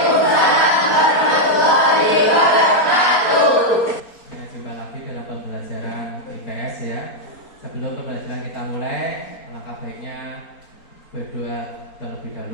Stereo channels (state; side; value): late; right; 4.3 ms